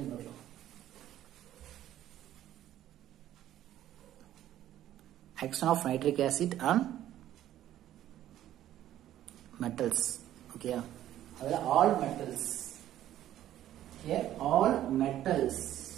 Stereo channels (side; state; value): left; quieter; 12.5 dB